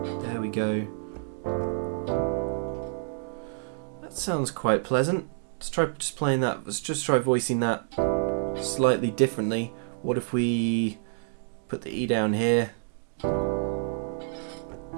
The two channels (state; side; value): silent; left; digital silence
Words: we go. That sounds quite pleasant. Let's try just playing that. Let's just try voicing that slightly differently. What if we put the E down here?